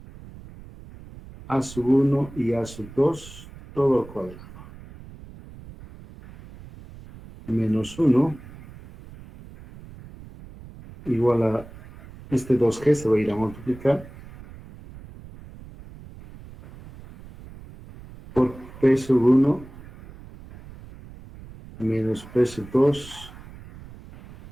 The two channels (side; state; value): right; noise; rumble, 18 dB below the sound